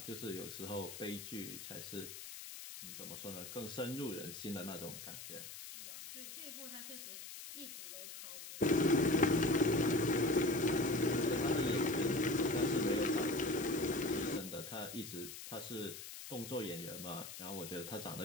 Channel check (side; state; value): left; noise; hiss, 11 dB below the sound